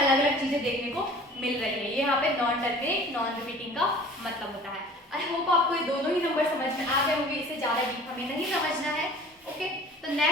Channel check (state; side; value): normal; both; correlation 0.46